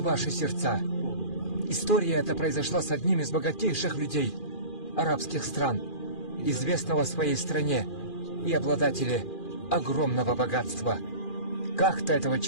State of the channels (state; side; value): late; right; 2.4 ms